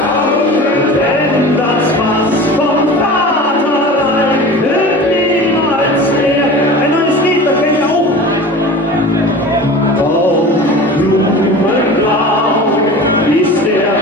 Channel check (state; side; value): normal; both; correlation 0.36